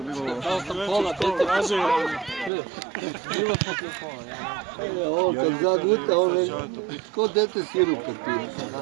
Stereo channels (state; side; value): drops out; left; at 2.5 s